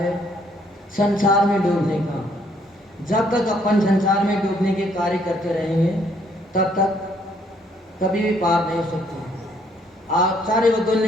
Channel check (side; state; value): both; normal; correlation 0.67